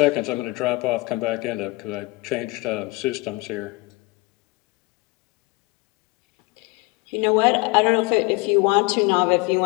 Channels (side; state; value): right; quieter; 23.9 dB